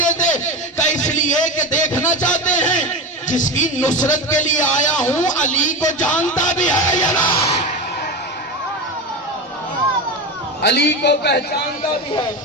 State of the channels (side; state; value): both; normal; correlation 0.21